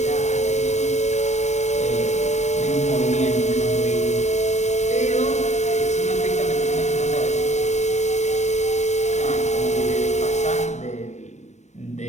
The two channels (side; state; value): right; late; 0.34 ms